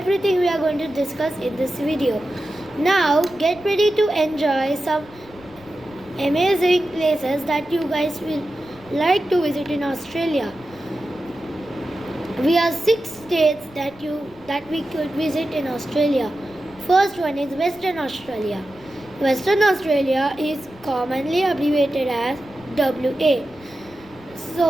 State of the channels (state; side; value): noise; right; rumble, 26 dB below the sound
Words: we are going to discuss in this video. Now get ready to enjoy some amazing places that you guys will like to visit in Australia. We have 6 states that we could visit in Australia. First one is Western Australia. Western Australia is commonly abbreviated as WA.